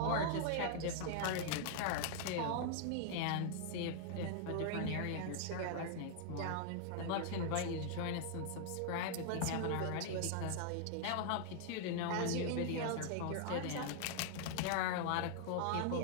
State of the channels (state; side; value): different; both; correlation 0.00